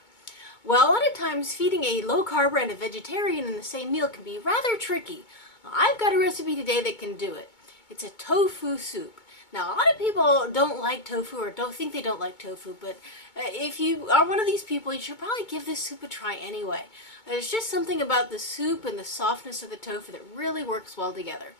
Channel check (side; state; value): right; late; 2.2 ms